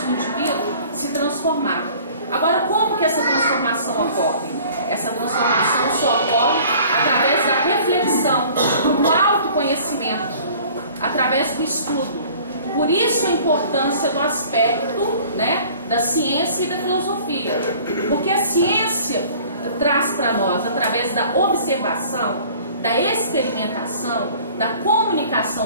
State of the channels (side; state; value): both; inverted; correlation -0.49